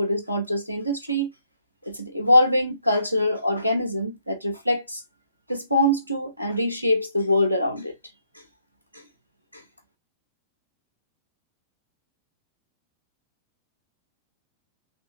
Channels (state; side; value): inverted; both; correlation -0.74